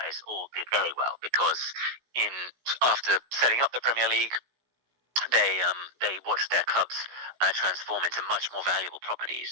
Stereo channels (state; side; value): late; left; 16 ms